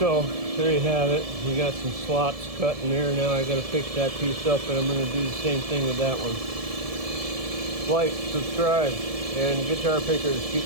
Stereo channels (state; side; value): late; left; 1.7 ms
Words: So there you have it. We got some slots cut in there. Now I got to fix that piece up, and I'm going to do the same thing with that one. Like, subscribe, and guitar pickers,